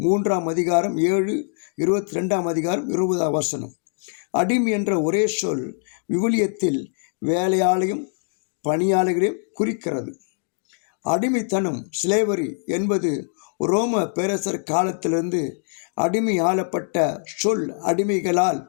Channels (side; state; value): right; silent; digital silence